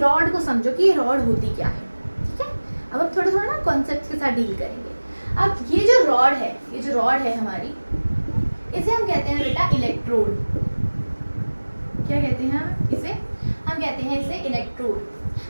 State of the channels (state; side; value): inverted; both; correlation -1.00